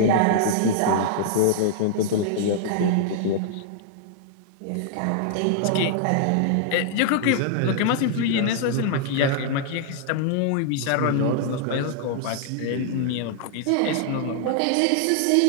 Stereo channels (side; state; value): both; different; correlation -0.01